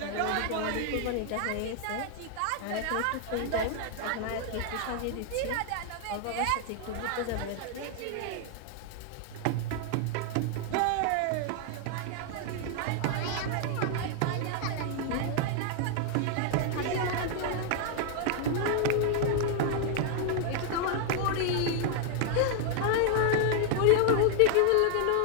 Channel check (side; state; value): both; different; correlation 0.00